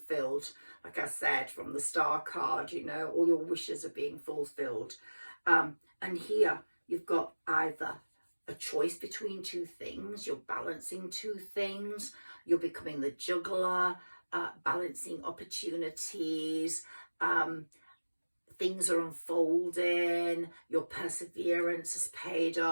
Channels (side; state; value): both; inverted; correlation -1.00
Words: Like I said, from the Star card, you know, all your wishes are being fulfilled. And here you've got either a choice between two things, you're balancing two things, you're becoming the juggler, balancing opportunities, things are unfolding, your perseverance has paid